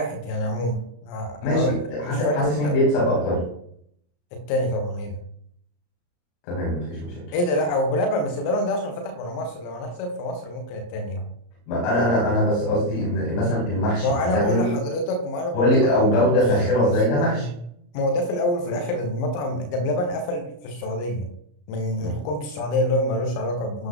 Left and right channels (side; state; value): right; late; 34 ms